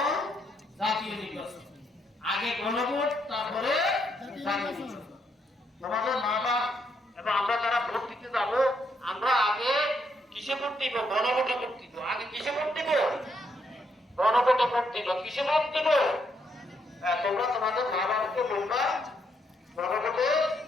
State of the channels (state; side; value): normal; both; correlation 0.76